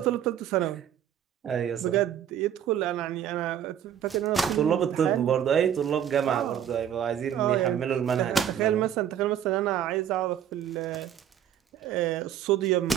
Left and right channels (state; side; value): quieter; left; 9.7 dB